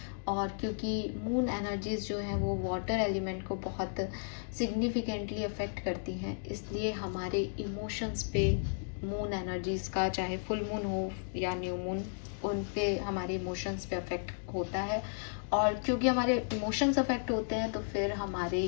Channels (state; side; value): silent; right; digital silence